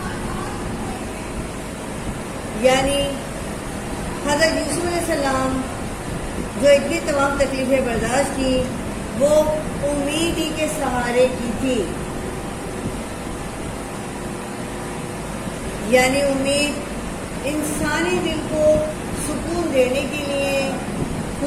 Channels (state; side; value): identical; both; correlation 1.00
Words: یعنی حضرت یوسف علیہ السلام جو اتنی تمام تکلیفیں برداشت کی، وہ امید ہی کے سہارے کی تھی. یعنی امید انسانی دل کو سکون دینے کے لیے،